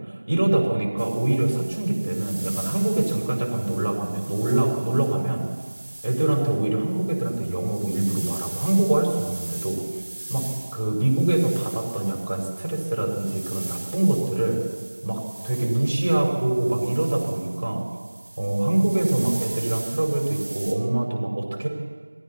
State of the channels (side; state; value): both; inverted; correlation -1.00